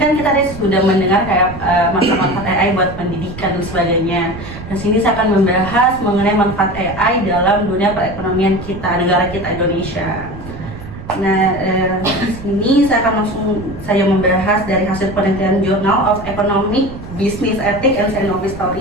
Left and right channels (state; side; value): noise; right; rumble, 13 dB below the sound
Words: kan kita tadi sudah mendengar kayak manfaat-manfaat AI buat pendidikan dan sebagainya. Dan sini saya akan membahas mengenai manfaat AI dalam dunia perekonomian kita, negara kita Indonesia. Nah, di sini saya akan langsung membahas dari hasil penelitian Journal of Economic Business Ethics and Scientific